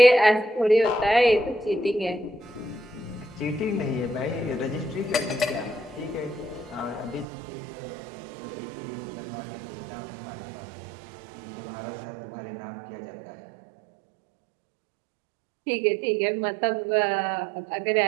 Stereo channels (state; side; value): drops out; left; at 7.2 s